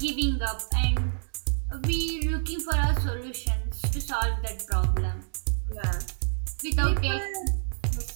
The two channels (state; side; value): silent; left; digital silence